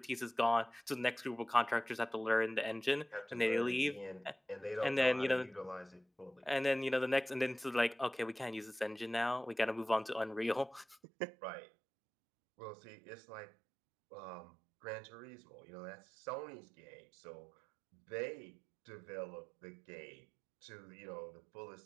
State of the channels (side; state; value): left; drops out; at 11.0 s